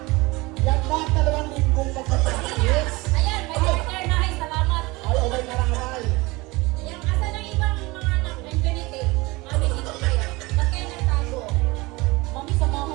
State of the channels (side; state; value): left; quieter; 22.9 dB